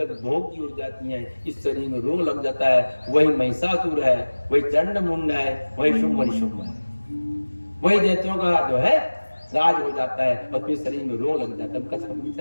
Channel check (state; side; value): inverted; both; correlation -1.00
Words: भोग की ओर जाती हैं, इस शरीर में रोग लग जाता है। वही महिषासुर है, वही चंड मुंड है, वही शुंभ निशुंभ है, वही दैत्यों का जो है राज हो जाता है और फिर शरीर में रोग लग जाता है। कथा